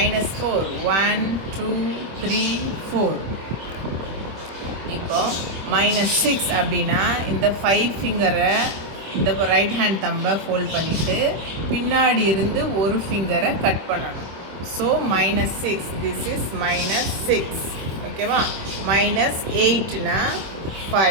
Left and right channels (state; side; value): late; left; 26 ms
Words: 1 2 3 4. இப்போ -6 அப்படின்னா இந்த 5 ஃபிங்கரை, இந்த ரைட் ஹேண்ட் தம்பை ஃபோல்ட் பண்ணிவிட்டு பின்னாடி இருந்து ஒரு ஃபிங்கரை கட் பண்ணணும். So -6, this is -6. ஓகேவா? -8னா